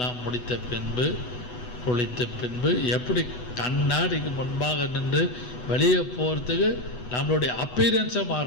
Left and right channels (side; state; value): right; late; 8.1 ms